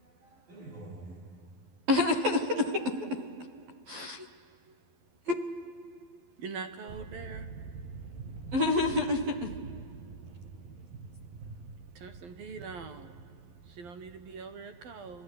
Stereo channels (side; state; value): left; late; 12 ms